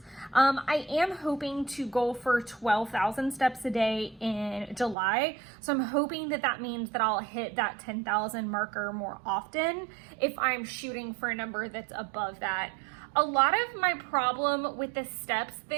I am hoping to go for 12,000 steps a day in July. So I'm hoping that that means that I'll hit that 10,000 marker more often if I'm shooting for a number that's above that. A lot of my problem with the steps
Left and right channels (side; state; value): left; drops out; at 5.0 s